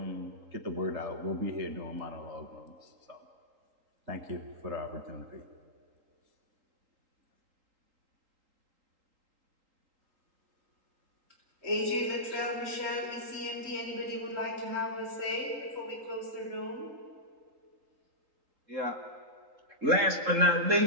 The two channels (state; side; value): late; left; 3.8 ms